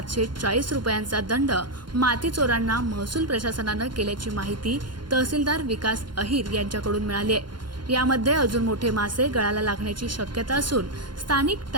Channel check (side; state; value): left; late; 0.71 ms